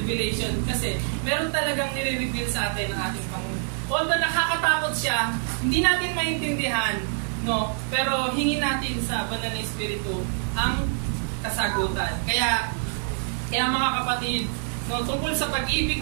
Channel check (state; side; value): silent; left; 61 dB below the other